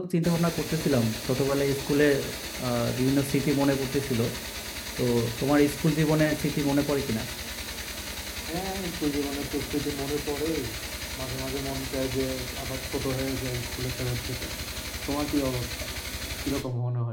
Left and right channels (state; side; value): identical; both; correlation 1.00